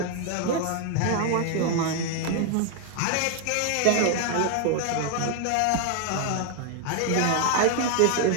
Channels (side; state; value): both; different; correlation 0.00